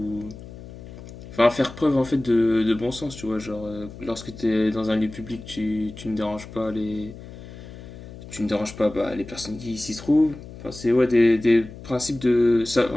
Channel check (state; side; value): noise; left; hum, 15 dB below the sound